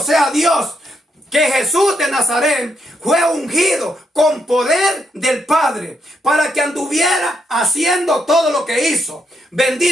sea Dios, que Jesús de Nazaret fue ungido con poder del Padre para que anduviera haciendo todo lo que hizo.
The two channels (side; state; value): both; normal; correlation 0.78